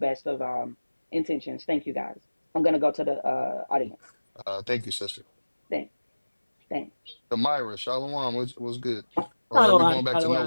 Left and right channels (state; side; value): inverted; both; correlation -1.00